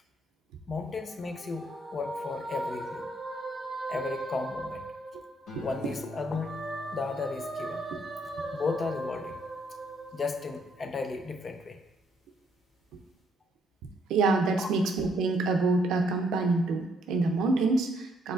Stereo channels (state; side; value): normal; both; correlation 0.70